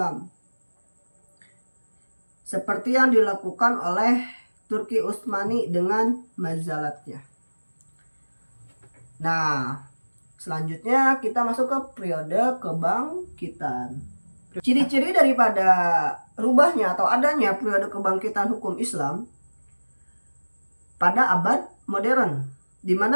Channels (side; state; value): both; inverted; correlation -1.00